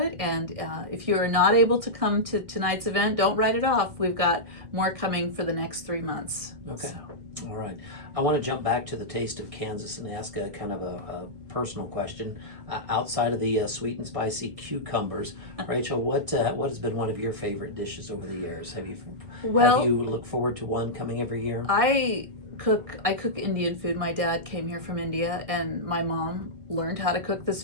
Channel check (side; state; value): left; late; 1.6 ms